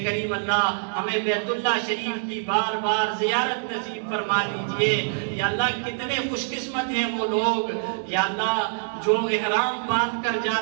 کریم اللہ ہمیں بیت اللہ شریف کی بار بار زیارت نصیب فرما دیجئے، یا اللہ کتنے خوش قسمت ہیں وہ لوگ یا اللہ جو احرام باندھ کر جا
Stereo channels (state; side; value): silent; left; digital silence